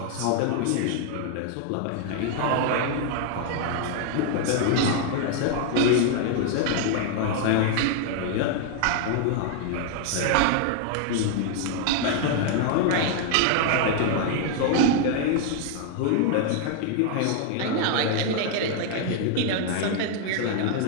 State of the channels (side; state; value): both; different; correlation 0.00